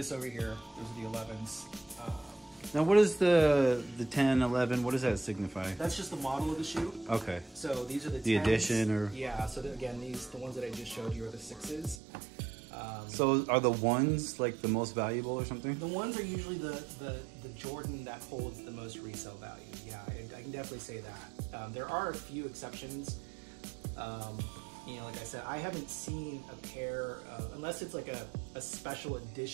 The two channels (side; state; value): left; drops out; at 12.0 s